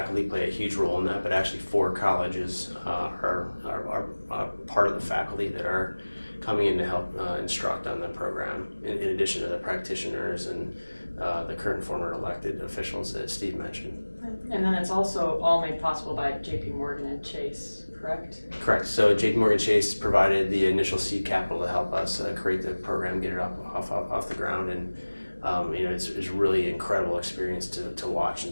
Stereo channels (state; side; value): inverted; both; correlation -1.00